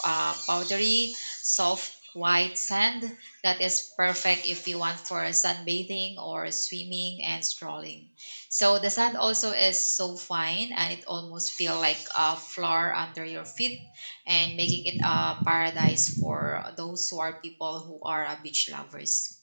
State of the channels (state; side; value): inverted; both; correlation -1.00